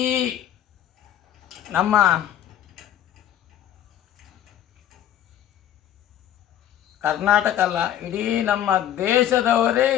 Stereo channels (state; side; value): quieter; right; 11.2 dB